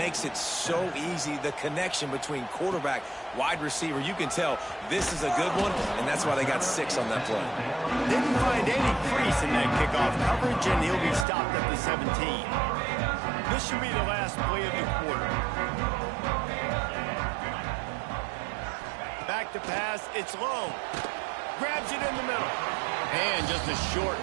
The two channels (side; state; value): left; drops out; at 11.2 s